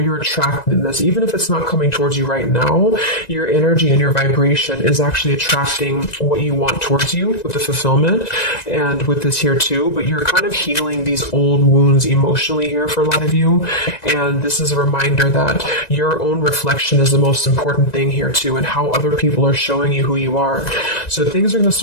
you're attracted in this. Even if it's not coming towards you right now, your energy and your vibration is actually attracting what you want towards you with the fulfillment, and with this here too. But you're kind of healing these old wounds emotionally here for a lot of you. And this is a reminder that your own reflection is the most important thing here too, and how other people are showing you who you are. So things are going to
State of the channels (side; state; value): right; late; 1.9 ms